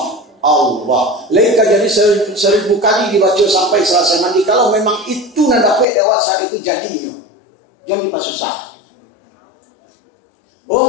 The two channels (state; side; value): drops out; right; at 5.9 s